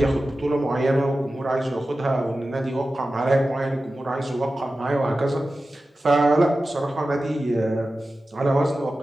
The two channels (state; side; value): normal; both; correlation 0.94